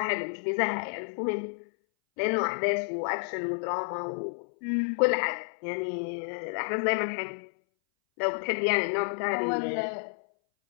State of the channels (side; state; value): right; silent; 58 dB below the other